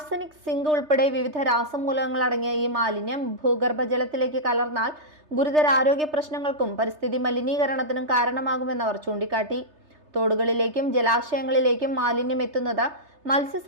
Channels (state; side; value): late; left; 3.3 ms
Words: സിങ്ക് ഉൾപ്പെടെ വിവിധ രാസമൂലകങ്ങൾ അടങ്ങിയ ഈ മാലിന്യം ഭൂഗർഭജലത്തിലേക്ക് കലർന്നാൽ ഗുരുതര ആരോഗ്യ പ്രശ്നങ്ങൾക്കും പരിസ്ഥിതി മലിനീകരണത്തിനും കാരണമാകുമെന്നവർ ചൂണ്ടിക്കാട്ടി. തോടുകളിലേക്കും ജലാശയങ്ങളിലേക്കും മാലിന്യം എത്തുന്നത്